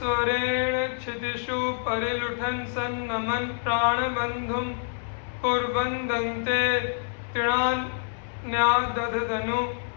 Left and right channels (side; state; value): right; silent; 60 dB below the other